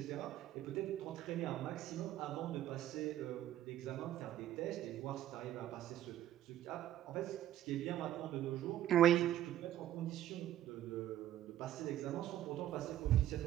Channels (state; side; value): quieter; left; 12.5 dB